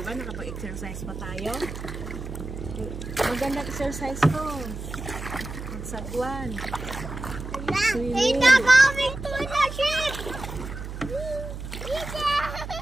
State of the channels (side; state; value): right; noise; hum, 8 dB below the sound